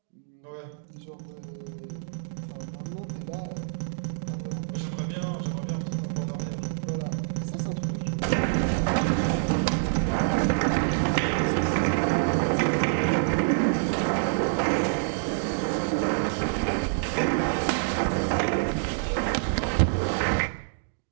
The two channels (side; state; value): left; silent; digital silence